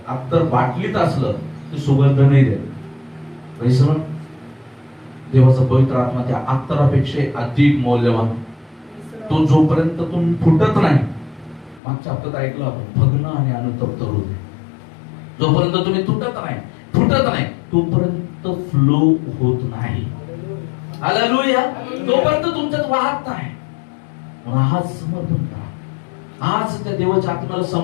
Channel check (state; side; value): drops out; right; at 11.8 s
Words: अत्तर बाटलीत असलं ते सुगंध नाही देत. Praise the Lord. देवाचा पवित्र आत्मा त्या अत्तरापेक्षा अधिक मौल्यवान. तो जोपर्यंत तुम्ही फुटत नाही, मागच्या हप्त्यात ऐकलं आपण, भग्न आणि अनुतप्त हृदय, जोपर्यंत तुम्ही तुटत नाही, फुटत नाही, तोपर्यंत फ्लो होत नाही. हालेलुया. तोपर्यंत तुमच्यात वाहत नाही. आज समर्पण करा, आज त्या देवाच्या आत्म्याला